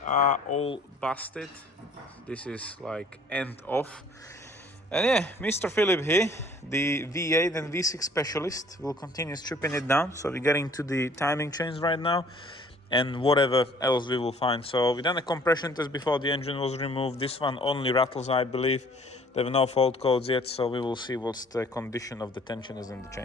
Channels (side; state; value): both; normal; correlation 0.55